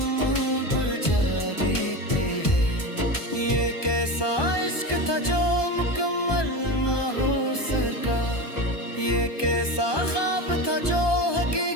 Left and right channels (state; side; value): late; right; 1.2 ms